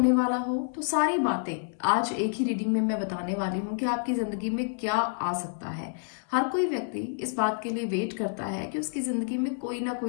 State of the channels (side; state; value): right; silent; 59 dB below the other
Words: वाला हो। तो सारी बातें आज एक ही रीडिंग में मैं बताने वाली हूँ कि आपकी जिंदगी में क्या आ सकता है। हर कोई व्यक्ति इस बात के लिए वेट करता है कि उसकी जिंदगी में कोई ना